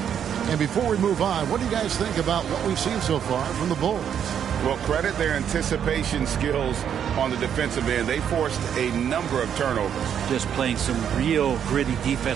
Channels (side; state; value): left; quieter; 8.7 dB